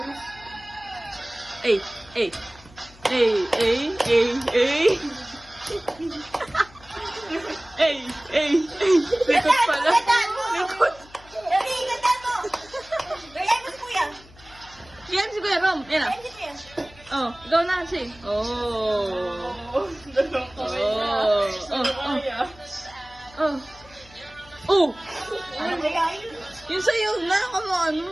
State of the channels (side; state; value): left; noise; hum, 23 dB below the sound